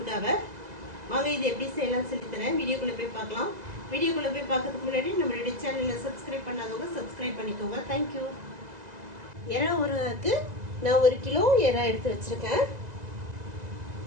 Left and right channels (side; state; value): left; late; 2.0 ms